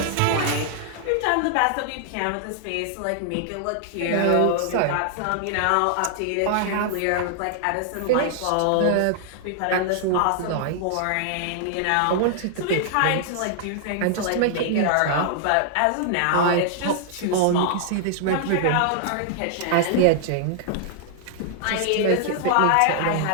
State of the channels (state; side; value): different; both; correlation -0.01